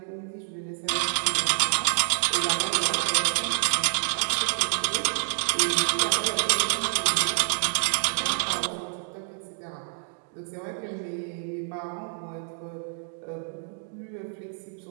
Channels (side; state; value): left; silent; digital silence